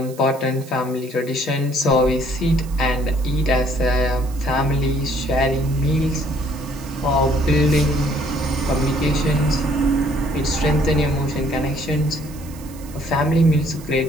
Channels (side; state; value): right; noise; hiss, 21 dB below the sound